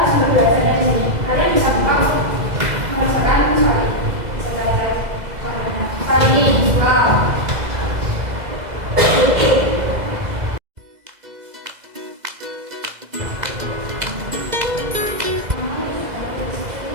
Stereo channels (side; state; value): left; late; 2.0 ms